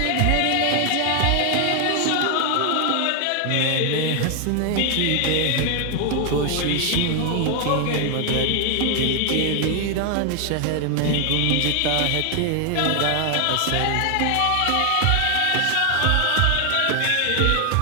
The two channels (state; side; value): different; both; correlation 0.00